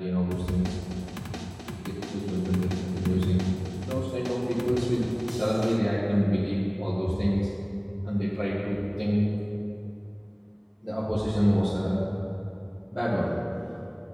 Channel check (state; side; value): identical; both; correlation 1.00